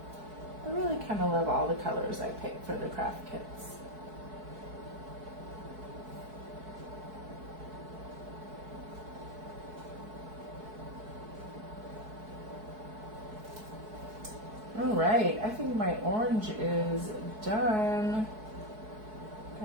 I really kind of love all the colors I pick for the craft kits. All right, I think my orange is done.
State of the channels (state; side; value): late; left; 4.6 ms